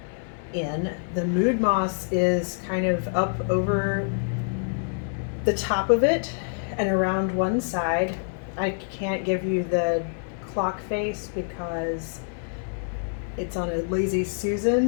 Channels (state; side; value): silent; right; digital silence